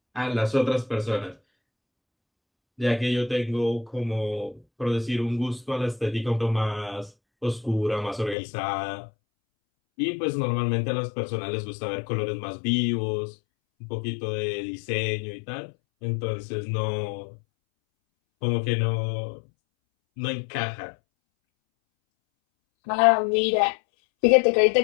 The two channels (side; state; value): right; drops out; at 8.3 s